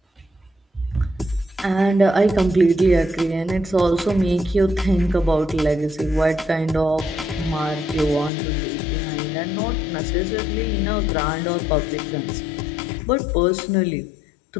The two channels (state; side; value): drops out; right; at 8.3 s